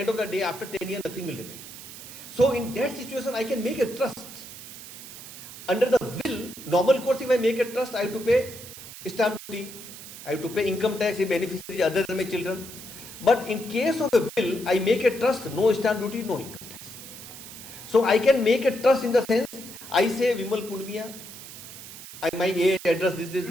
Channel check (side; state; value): right; noise; hiss, 14 dB below the sound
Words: of the day, after 10 years, nothing will remain. So in that situation, I can make a trust. Under the will, normal course, if I make a trust, I have to pay stamp duty. I have to pay income tax if beneficiary other than my children. But in case of a will, I make a trust, no stamp duty, no income tax. So I can make a trust in the sense, I say Vimal Punmiya, my age, address,